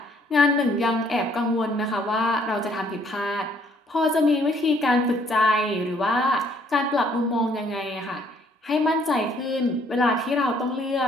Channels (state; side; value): normal; both; correlation 0.64